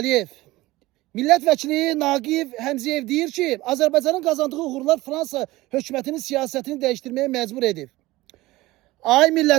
Millət vəkili Naqif Həmziyev deyir ki, Azərbaycanın qazandığı uğurlar Fransa hökumətinin siyasətini dəyişdirməyə məcbur edib. Ay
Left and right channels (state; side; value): quieter; left; 18.8 dB